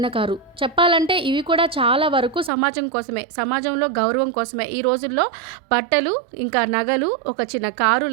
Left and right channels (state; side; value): drops out; left; at 2.5 s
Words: కారు. చెప్పాలంటే ఇవి కూడా చాలా వరకు సమాజం కోసమే, సమాజంలో గౌరవం కోసమే. ఈ రోజుల్లో బట్టలు ఇంకా నగలు, ఒక చిన్న కారు